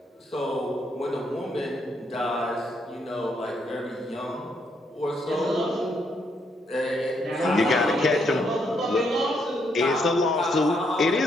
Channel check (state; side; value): normal; both; correlation 0.74